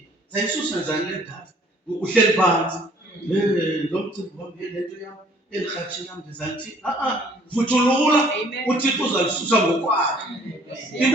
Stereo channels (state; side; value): normal; both; correlation 0.58